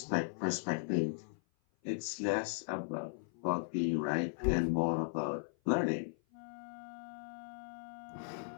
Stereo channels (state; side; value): silent; right; 53 dB below the other